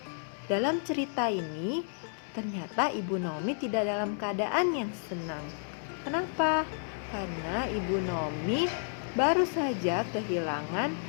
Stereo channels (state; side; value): silent; right; digital silence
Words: dalam cerita ini ternyata Ibu Naomi tidak dalam keadaan yang senang. Kenapa? Karena Ibu Naomi baru saja kehilangan